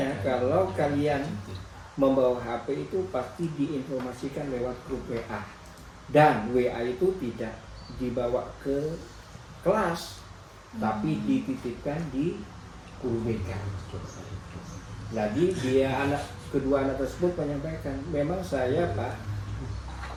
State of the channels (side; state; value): both; identical; correlation 1.00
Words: kalau kalian membawa HP itu pasti diinformasikan lewat grup WA, dan WA itu tidak dibawa ke kelas tapi dititipkan di guru BK. Jadi kedua anak tersebut menyampaikan, memang saya Pak